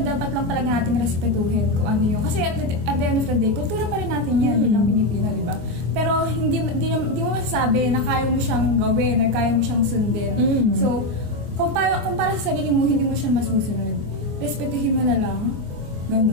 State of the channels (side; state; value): left; late; 24 ms